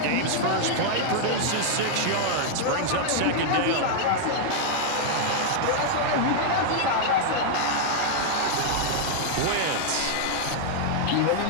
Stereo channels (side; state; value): both; different; correlation -0.01